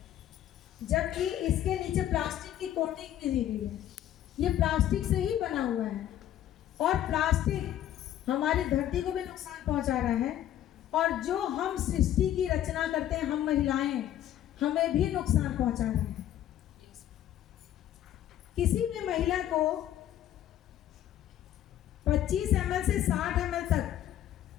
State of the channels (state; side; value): quieter; right; 11.9 dB